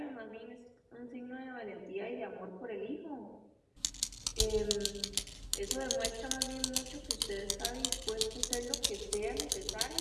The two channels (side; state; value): both; identical; correlation 1.00